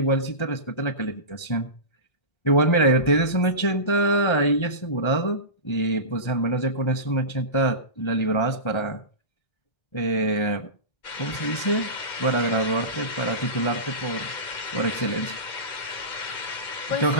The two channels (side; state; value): right; late; 1.3 ms